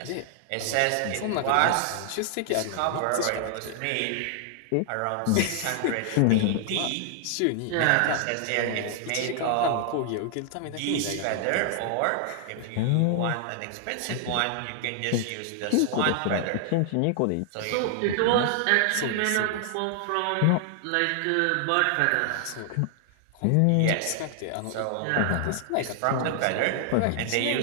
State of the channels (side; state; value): both; different; correlation 0.00